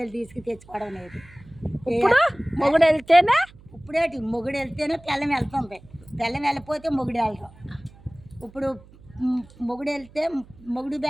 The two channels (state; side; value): noise; right; hum, 24 dB below the sound